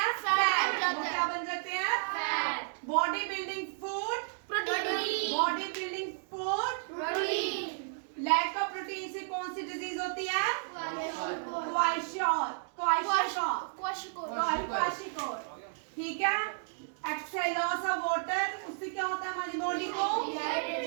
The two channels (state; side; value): silent; left; 56 dB below the other